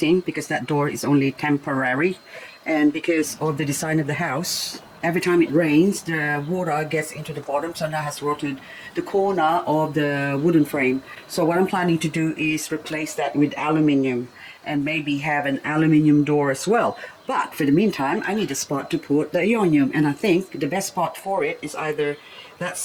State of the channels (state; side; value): identical; both; correlation 1.00